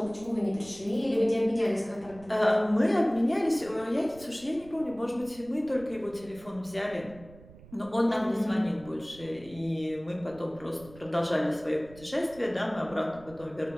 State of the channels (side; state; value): right; noise; rumble, 21 dB below the sound